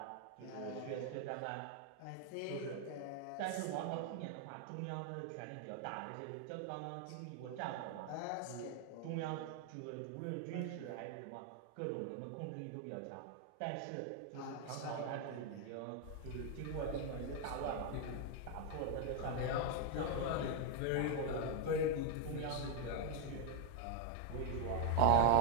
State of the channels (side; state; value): both; different; correlation 0.00